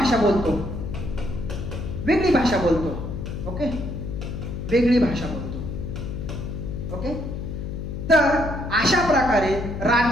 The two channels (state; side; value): noise; left; hum, 6 dB below the sound